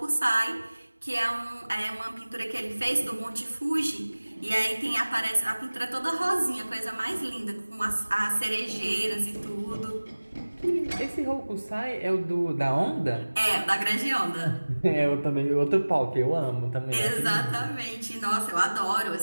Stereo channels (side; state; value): both; inverted; correlation -1.00